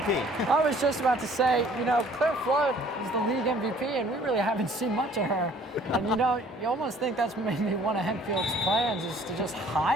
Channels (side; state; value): both; normal; correlation 0.56